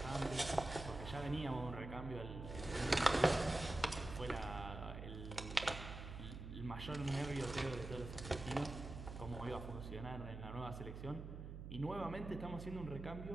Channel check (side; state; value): right; noise; hum, 8 dB below the sound